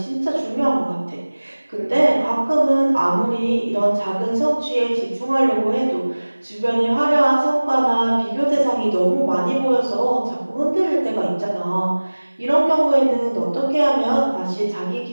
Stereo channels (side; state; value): both; inverted; correlation -1.00